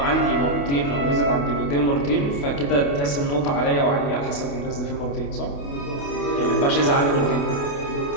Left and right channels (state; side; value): late; right; 28 ms